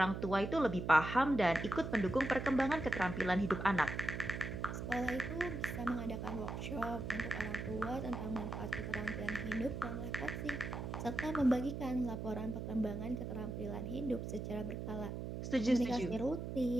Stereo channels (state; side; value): noise; right; hum, 5 dB below the sound